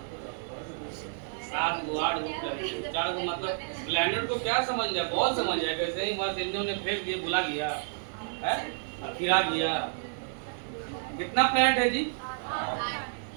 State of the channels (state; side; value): silent; left; digital silence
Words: 7 गो 8 गो 4 गो, मतलब प्लेनेट को क्या समझ लिया, बहुत समझ लिया। कैसे ही बस इन्होंने फेंक दिया, बुला गया है, गिरा दिया। कितना प्लेनेट है जी?